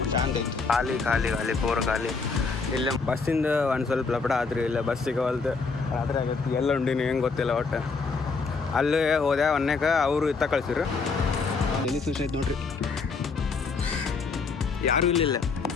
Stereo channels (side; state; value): right; quieter; 4.6 dB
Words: ಶಾಂತ ಐತಿ. ಖಾಲಿ ಖಾಲಿ ಖಾಲಿ ಪೂರ ಖಾಲಿ. ಇಲ್ಲೇ ಬಸ್ಸಿಂದ ಒಂದು ಸ್ವಲ್ಪ ಲಪಡ ಆತ್ರಿ, ಇಲ್ಲ ಬಸ್ ಸಿಗವಲ್ದು, ರಾತ್ರಿ ಆಗತ್ತೆ. ಎಲ್ಲ ಉಂಡಿನಿ ಹೆಂಗೆ ಗೊತ್ತಿಲ್ಲ ಒಟ್ಟು. ಅಲ್ಲೇ ಹೋದೆ ಒನ್ನೇಕ ಅವರು ಇತ್ತ ಕಳ್ಸಿರು. ಎಲ್ಲಿ ಫಿಶ್ ಐತೆ ನೋಡ್ರಿ, ಯಾರೂ ಇಲ್ಲಿಲ್ಲ.